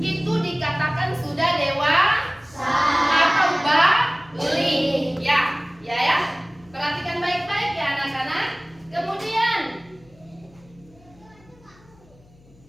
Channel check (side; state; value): left; noise; hum, 27 dB below the sound